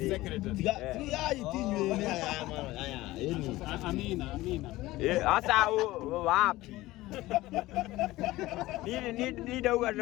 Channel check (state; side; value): quieter; right; 18.0 dB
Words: Asa wapi? Ni dauga